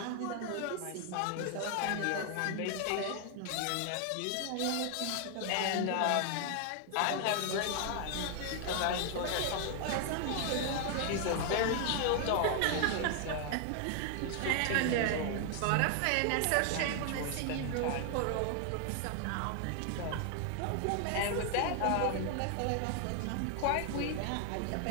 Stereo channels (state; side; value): different; both; correlation 0.00